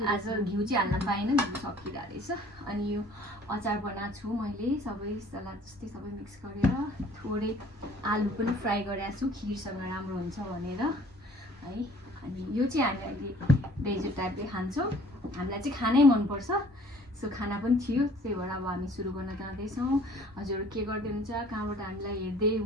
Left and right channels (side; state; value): both; normal; correlation 0.54